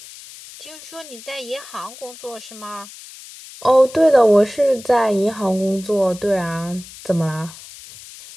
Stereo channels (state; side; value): noise; left; hiss, 17 dB below the sound